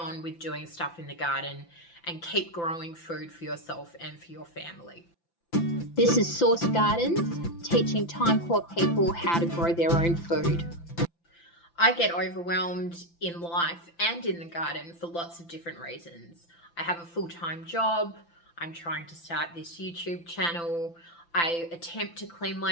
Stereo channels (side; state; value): right; late; 5.9 ms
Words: with doing stuff in the garden and keep growing food for yourself and for your family. This is Source Gardens, teaching time poor people how to grow their own food. I get overwhelmed in life and in the garden for lots of different reasons. I have a full-time job. I'm trying to start this YouTube channel. I attempt to clean